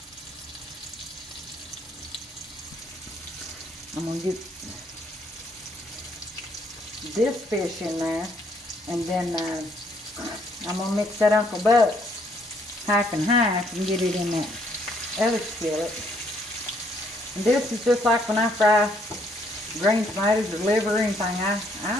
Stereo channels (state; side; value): normal; both; correlation 0.69